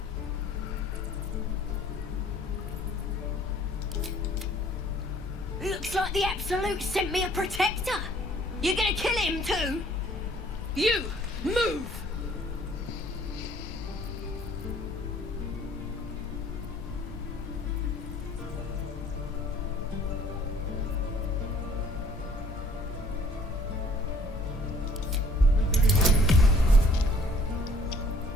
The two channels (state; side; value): normal; both; correlation 0.57